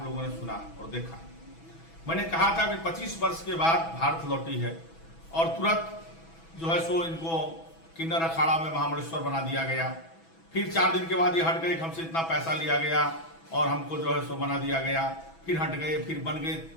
लोगों ने सुना और देखा। मैंने कहा था कि 25 वर्ष के बाद भारत लौटी है और तुरंत जो है सो इनको किन्नर अखाड़ा में महामंडलेश्वर बना दिया गया। फिर 4 दिन के बाद ये हट गए, हमसे इतना पैसा लिया गया और हमको जो है सो बना दिया गया। फिर हट गए, फिर बन गए,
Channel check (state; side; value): late; right; 6.1 ms